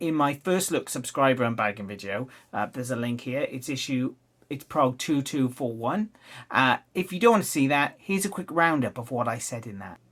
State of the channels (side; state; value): both; identical; correlation 1.00